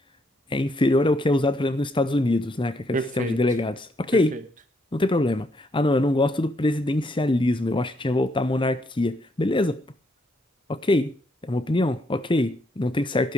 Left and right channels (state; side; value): normal; both; correlation 0.73